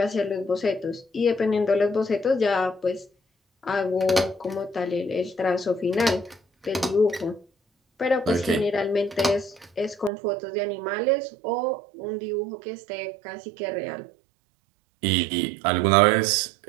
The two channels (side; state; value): left; drops out; at 10.1 s